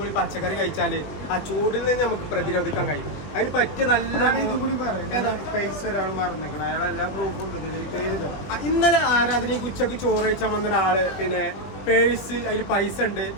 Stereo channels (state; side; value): late; right; 20 ms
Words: പച്ചക്കറി കഴിച്ചാല് ആ ചൂടിൽ നിന്ന് നമുക്ക് പ്രതിരോധിക്കാൻ കഴിയും. അതിന് പറ്റിയ നല്ല ഇതുകൂടി ഇന്നലെ ആരാധനയ്ക്ക് ഉച്ചക്ക് ചോറ് കഴിച്ചാൽ വന്ന ഒരാള് പിന്നെ പേഴ്സ് അതിൽ പൈസ ഉണ്ട്,